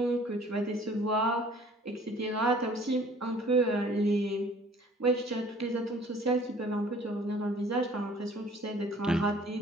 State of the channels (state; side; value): normal; both; correlation 0.53